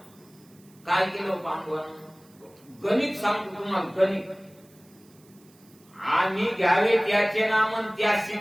काय केलं पांडवानं गणित सांगतो तुम्हाला गणित आम्ही घ्यावे त्याचे नाम आणि त्याशी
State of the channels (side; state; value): right; noise; hiss, 29 dB below the sound